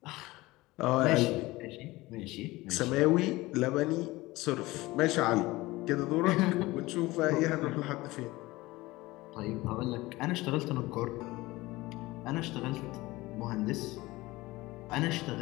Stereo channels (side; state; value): right; quieter; 19.9 dB